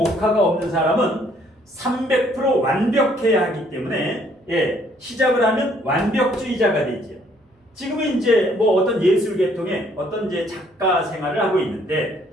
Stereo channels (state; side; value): normal; both; correlation 0.64